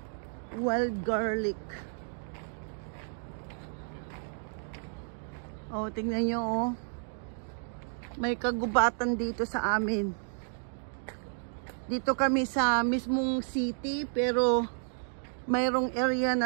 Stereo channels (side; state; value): left; silent; digital silence